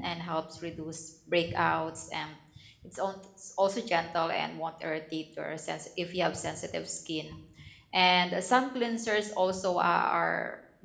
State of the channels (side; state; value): both; identical; correlation 1.00